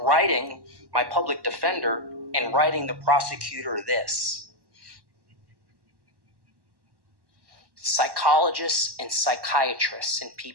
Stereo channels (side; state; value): left; late; 1.1 ms